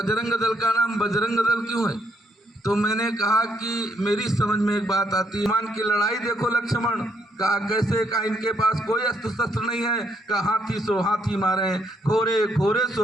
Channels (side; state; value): both; normal; correlation 0.73